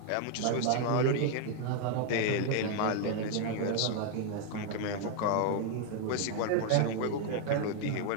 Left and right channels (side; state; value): both; different; correlation 0.00